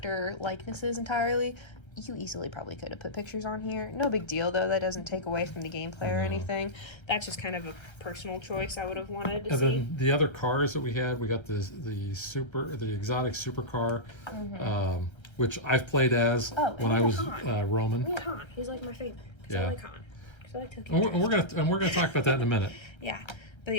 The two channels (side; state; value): right; late; 1.3 ms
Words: likenesses entirely. You easily probably could have put pictures on here. No big deal though. That doesn't take away from the gameplay or anything. That's just kind of a personal choice I would have wanted to And see. then the other cars that we had, we got the exotic supercar, which I've played as when I was Roman. Yeah, Han. He's like my favorite. Yeah. I like Han. 'Cause I like Tokyo. And we're gonna talk about that in a minute, Yeah, but